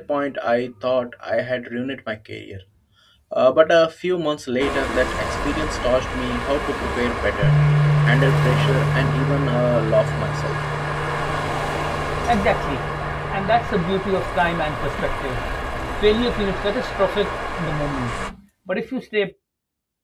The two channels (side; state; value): both; identical; correlation 1.00